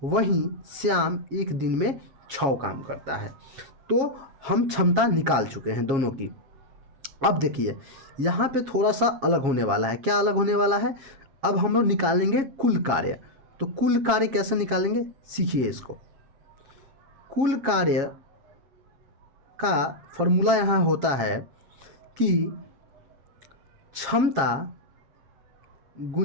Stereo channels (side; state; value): left; late; 7.3 ms